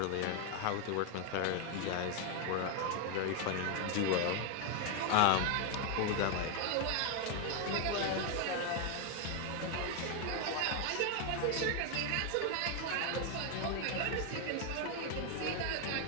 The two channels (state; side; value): different; both; correlation 0.01